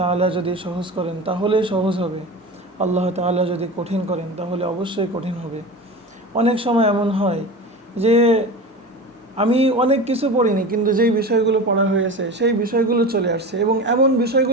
যদি সহজ করেন তাহলেই সহজ হবে, আল্লাহ তাআলা যদি কঠিন করেন তাহলে অবশ্যই কঠিন হবে। অনেক সময় এমন হয় যে আমি অনেক কিছু পড়িনি, কিন্তু যেই বিষয়গুলো পড়া হয়েছে সেই বিষয়গুলো চলে আসছে এবং এমন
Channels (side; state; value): both; normal; correlation 0.30